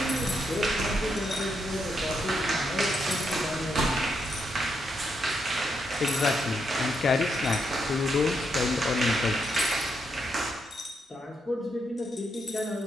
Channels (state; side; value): normal; both; correlation 0.80